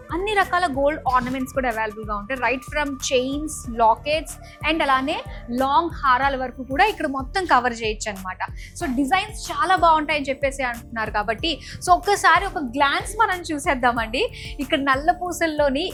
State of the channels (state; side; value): identical; both; correlation 1.00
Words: అన్ని రకాల గోల్డ్ ఆర్నమెంట్స్ కూడా అవైలబుల్గా ఉంటాయి. Right from chains, lockets and అలానే లాంగ్ హారాల వరకు కూడా ఇక్కడ మొత్తం కవర్ చేయొచ్చు అనమాట. సో డిజైన్స్ చాలా బాగుంటాయని చెప్పేసి అంటున్నారు కాబట్టి సో ఒక్కసారి ఒక గ్లాన్స్ మనం చూసేద్దామండి. ఇక్కడ నల్ల పూసల్లోని